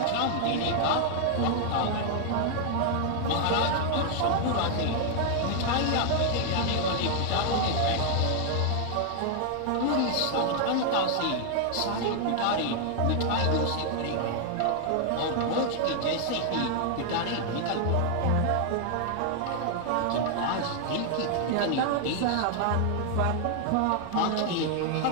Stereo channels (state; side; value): different; both; correlation 0.00